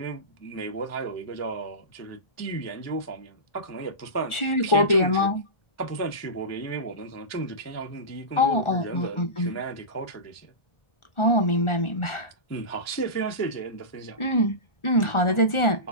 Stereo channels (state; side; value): late; right; 1.4 ms